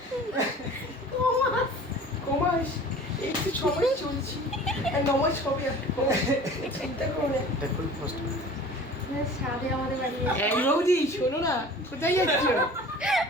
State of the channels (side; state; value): both; normal; correlation 0.43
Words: কমাস একটু সময় চলছি আর নমাজ হবে চিন্তা করো না। এটা খুব কষ্ট। সাথে আমাদের বাড়ি এই বৌদি শোনো না, কোথায় যাচ্ছ?